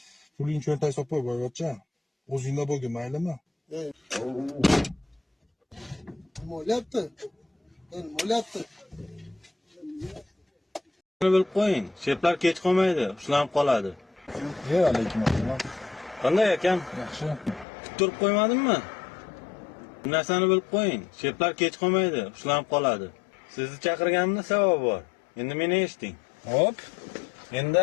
Puling cho'ntagga solib qo'y, boyvachcha. O'zingda bo'lgin, maylimi? Nima bo'lyapti? Nima bo'lyapti? bilib qo'ying. Sheplar kech qolmaydi, ushlanib qoladi. Alaykum assalom. Qanday ekan? Yaxshi. Turib qo'ymadimmi? Bu narsani bilib qo'ying. Sheplar kech qolmaydi, ushlanib qoladi. Sizni chaqirganimda sabab bor. Endi meni eshiting. Hop. Endi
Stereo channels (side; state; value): right; drops out; at 17.7 s